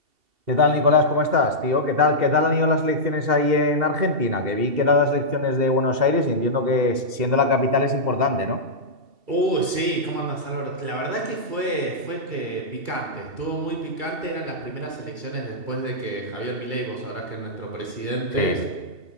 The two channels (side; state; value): left; late; 2.7 ms